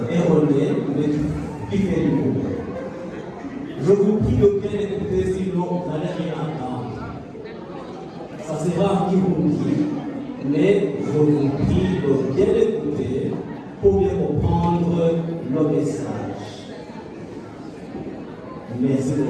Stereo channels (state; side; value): identical; both; correlation 1.00